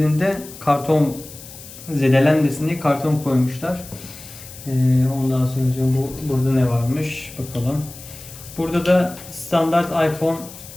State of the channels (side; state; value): left; noise; hiss, 16 dB below the sound